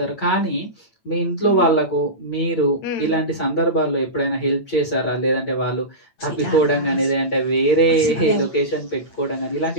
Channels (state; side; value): late; right; 8.7 ms